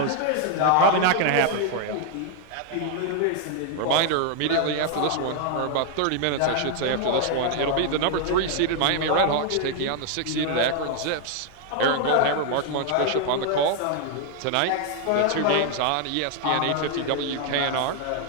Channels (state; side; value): different; both; correlation 0.00